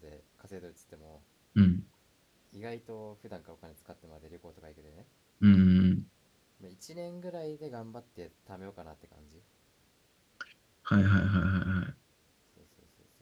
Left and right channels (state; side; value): identical; both; correlation 1.00